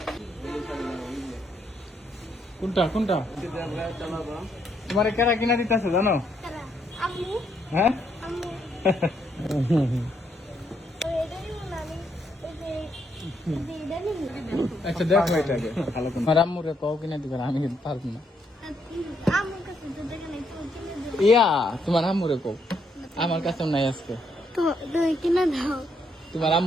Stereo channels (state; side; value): normal; both; correlation 0.74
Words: কোনটা কোনটা তোমার কেরা কিনা দিতেছে জানো? কারা? আম্মু, হ্যাঁ আম্মু। এটা নিব না আমি, এই যে এটা নিব। আচ্ছা দেখো এটাকে ভালো করে আমার আম্মুরে কও কিনা দিবে আমি কিন্তু পারবো না। আম্মুর কাছে তো দেখে নাই, তো কিনে দাও। ইয়া তোমার আম্মুরে কও, আমার কাছে নাই আজকে। তো তুমি কিনে দাও। তোমার